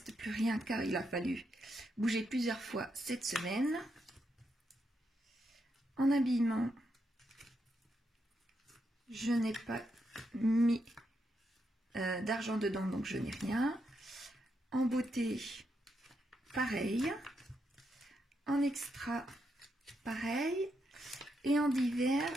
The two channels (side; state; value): both; normal; correlation 0.81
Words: plus rien car il a fallu bouger plusieurs fois cette semaine. En habillement, je n'ai pas mis d'argent dedans, donc je n'ai rien. En beauté, pareil. En extra, pareil. Et en divers,